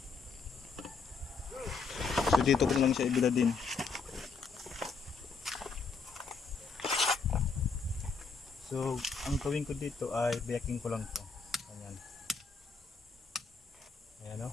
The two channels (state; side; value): quieter; right; 4.7 dB